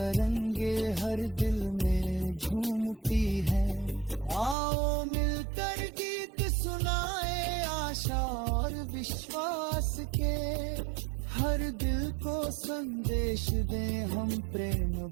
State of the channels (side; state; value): left; drops out; at 4.5 s